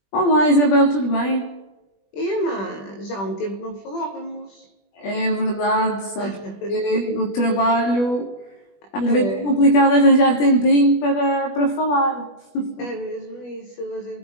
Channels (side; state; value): right; late; 20 ms